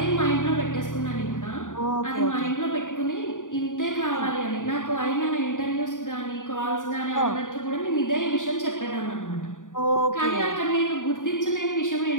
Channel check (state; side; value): late; right; 0.88 ms